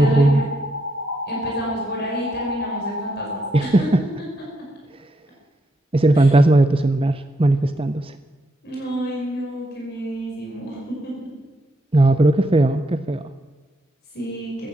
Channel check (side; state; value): both; normal; correlation 0.79